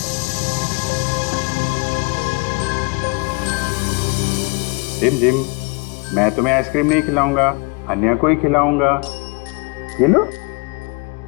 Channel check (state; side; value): quieter; right; 28.9 dB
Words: रिमझिम, मैं तुम्हें आइसक्रीम नहीं खिलाऊंगा, अन्या को ही खिलाऊंगा। ये लो,